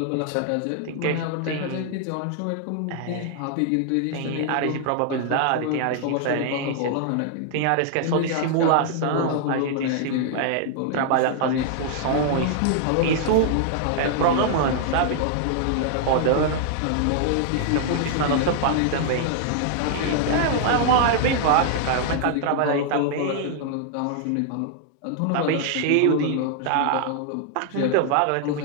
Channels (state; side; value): different; both; correlation 0.00